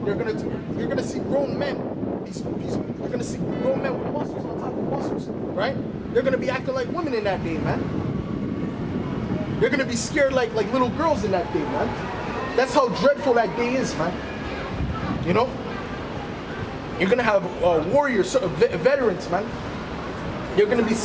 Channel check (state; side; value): identical; both; correlation 1.00